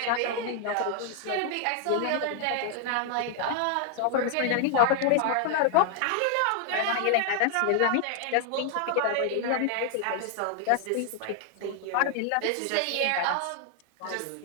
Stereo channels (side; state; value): both; different; correlation 0.00